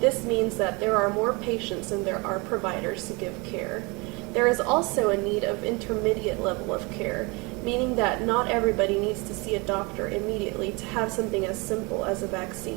This means that there are more patients than there are providers to give care. There is also a need of intermediate level of care, meaning that not everybody needs to see a doctor immediately to have something as simple as a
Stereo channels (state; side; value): quieter; left; 27.6 dB